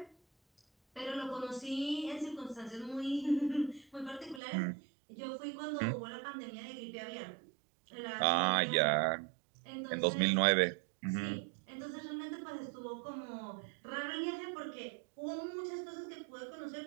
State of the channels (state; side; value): drops out; left; at 4.4 s